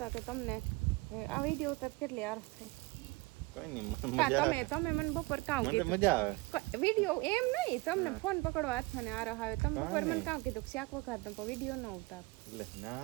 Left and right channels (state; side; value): quieter; left; 23.9 dB